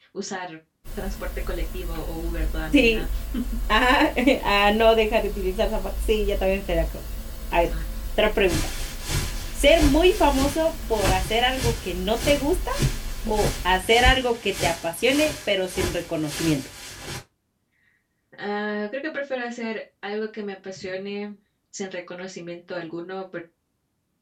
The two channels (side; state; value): both; identical; correlation 1.00